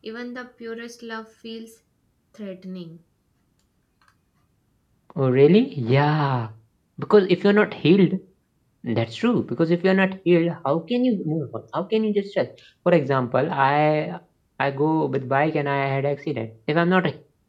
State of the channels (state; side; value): identical; both; correlation 1.00